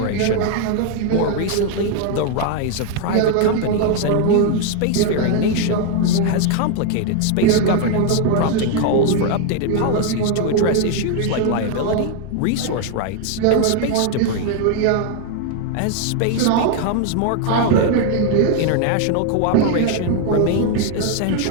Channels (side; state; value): both; different; correlation 0.01